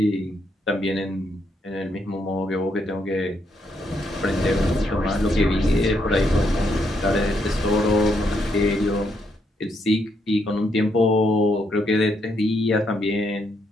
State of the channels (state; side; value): normal; both; correlation 0.77